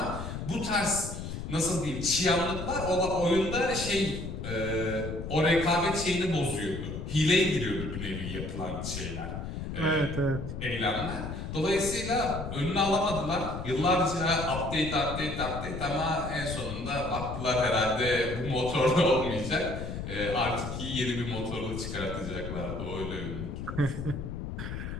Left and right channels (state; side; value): noise; left; rumble, 6 dB below the sound